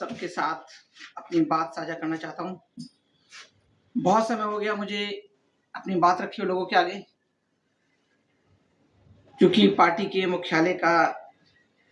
साथ अपनी बात साझा करना चाहता हूँ। बहुत समय हो गया मुझे अपनी बात रखी हो लोगों के आगे, क्योंकि पार्टी के मुख्यालय का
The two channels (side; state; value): both; identical; correlation 1.00